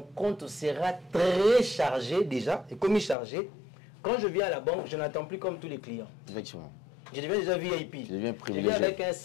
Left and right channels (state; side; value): drops out; right; at 3.2 s